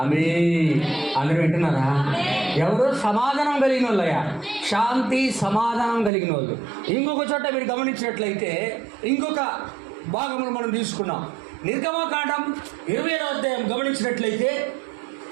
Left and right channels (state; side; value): drops out; left; at 6.1 s